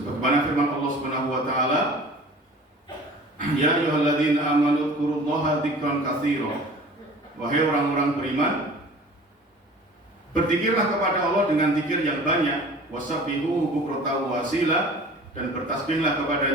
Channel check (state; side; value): normal; both; correlation 0.44